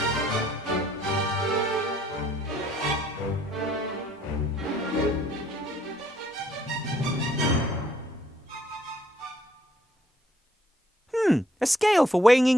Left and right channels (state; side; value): normal; both; correlation 0.65